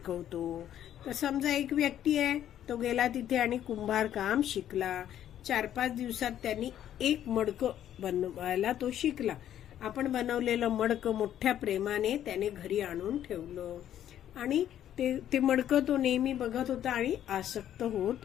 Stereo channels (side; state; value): right; quieter; 11.0 dB